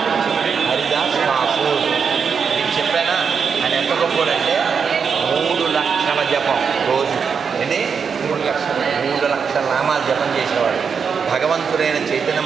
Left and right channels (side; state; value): left; quieter; 6.2 dB